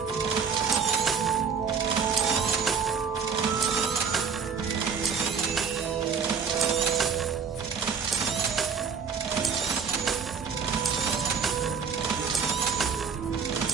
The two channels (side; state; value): left; quieter; 6.2 dB